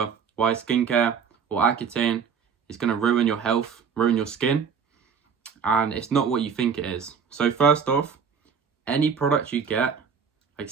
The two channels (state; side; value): quieter; left; 6.5 dB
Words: why skincare or Accutane is going to ruin your health, ruin your skin, and it's not what you think it is. So first off, any product you get, like